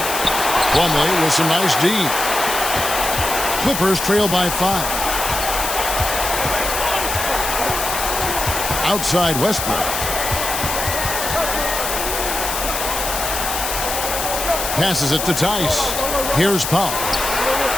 Plumlee with some nice D. Clippers trail by 5. Outside Westbrook. Passes it to Tice. Here's Powell.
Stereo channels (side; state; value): left; noise; hiss, 3 dB below the sound